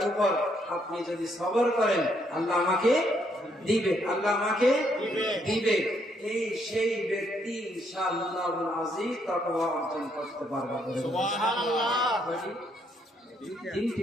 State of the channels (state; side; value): normal; both; correlation 0.72